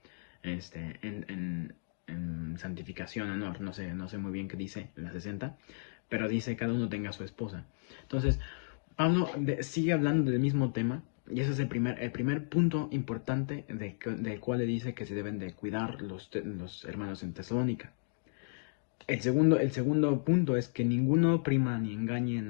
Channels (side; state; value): right; silent; digital silence